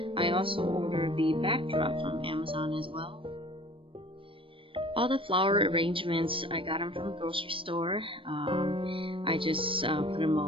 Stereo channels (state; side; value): late; left; 0.25 ms